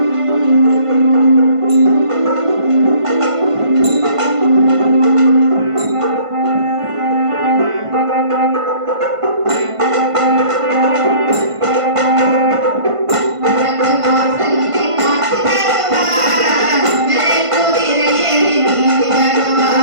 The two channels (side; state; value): left; late; 1.5 ms